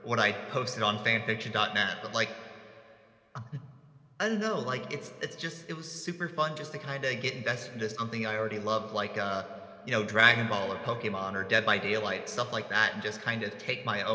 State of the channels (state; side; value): identical; both; correlation 1.00